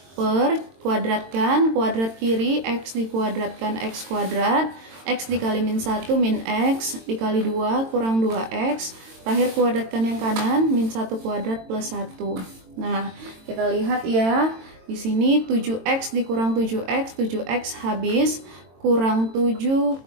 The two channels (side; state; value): left; late; 22 ms